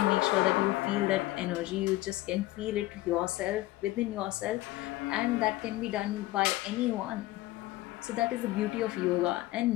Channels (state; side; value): quieter; right; 17.6 dB